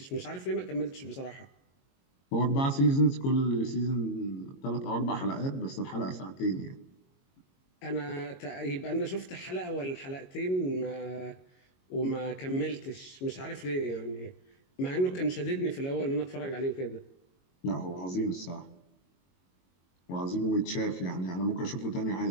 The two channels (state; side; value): late; right; 22 ms